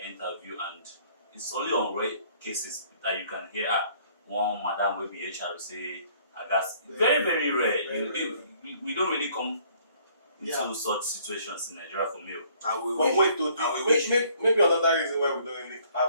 interview, and it's only on rare cases that you can hear one madam will be HR say, I guess very, very rare. We don't really come into such situations in Nigeria for male. And we But wait, though, and we wish. maybe another reason why we don't really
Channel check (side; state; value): both; inverted; correlation -0.60